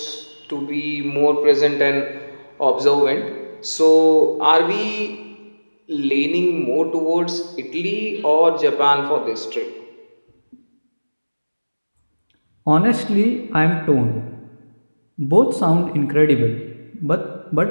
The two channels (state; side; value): inverted; both; correlation -1.00